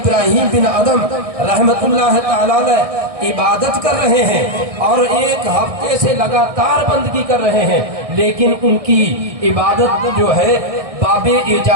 بن ادم رحمت اللہ تعالی عبادت کر رہے ہیں اور ایک ہفتے سے لگاتار بندگی کر رہے ہیں، لیکن ان کی عبادت جو ہے باب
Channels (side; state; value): left; late; 1.6 ms